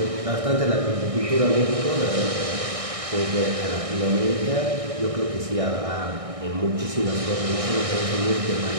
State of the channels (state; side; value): late; left; 1.6 ms